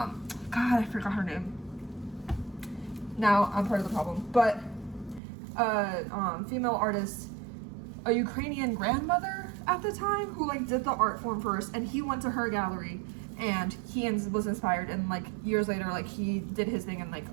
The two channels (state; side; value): drops out; left; at 5.2 s